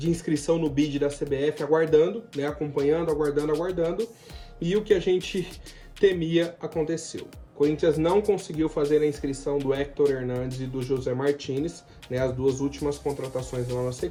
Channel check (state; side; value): identical; both; correlation 1.00